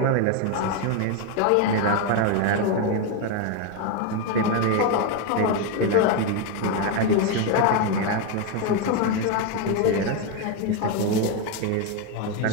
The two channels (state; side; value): different; both; correlation 0.02